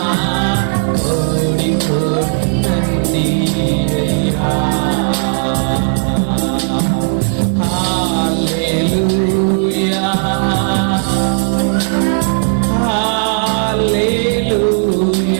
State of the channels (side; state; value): left; silent; 63 dB below the other